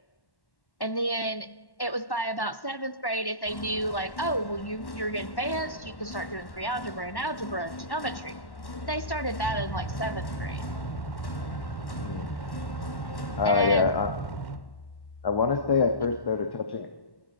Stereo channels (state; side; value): late; right; 1.1 ms